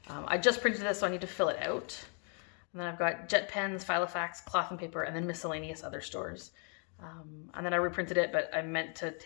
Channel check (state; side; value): quieter; right; 39.8 dB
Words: I just printed this, so I need to fill it out. And then I've got jet pens, FiloFax, cloth and paper, and then miscellaneous other stores. And then I reprinted it, but I meant to